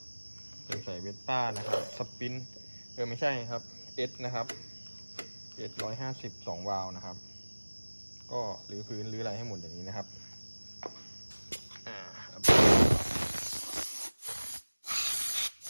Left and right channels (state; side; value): inverted; both; correlation -1.00